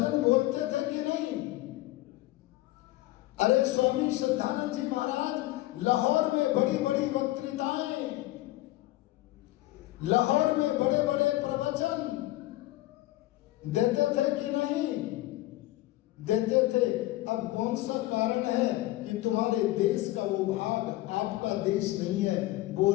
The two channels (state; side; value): quieter; right; 17.5 dB